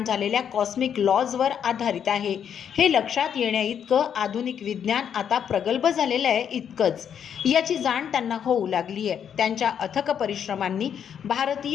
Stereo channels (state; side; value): quieter; right; 8.4 dB